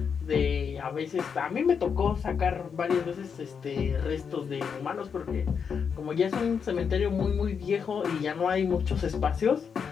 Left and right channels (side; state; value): right; quieter; 6.5 dB